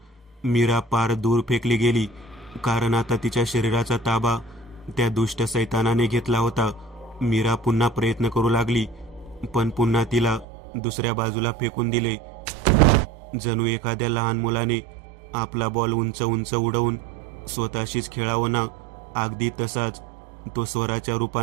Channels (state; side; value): drops out; left; at 10.5 s